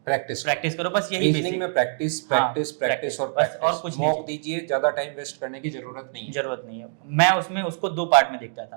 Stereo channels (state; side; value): silent; left; digital silence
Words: प्रैक्टिस करो, बस यही रीजनिंग में प्रैक्टिस और कुछ मॉक दीजिए, ज्यादा टाइम वेस्ट करने की जरूरत नहीं है। मैं उसमें उसको दो पार्ट में देखता